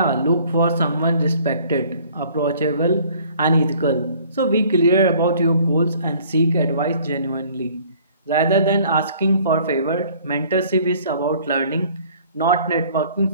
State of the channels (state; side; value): inverted; both; correlation -0.55